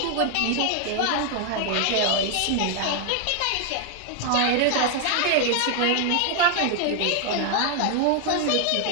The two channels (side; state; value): both; different; correlation 0.00